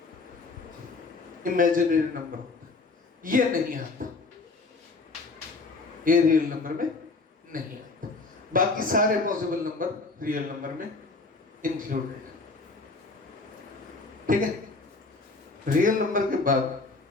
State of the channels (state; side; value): quieter; right; 3.7 dB